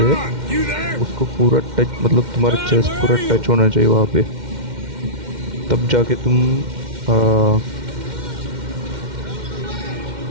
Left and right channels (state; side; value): late; left; 2.1 ms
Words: उसको पूरा टच, मतलब तुम्हारा चेस्ट पूरा टच होना चाहिए वहाँ पे, तब जाके तुम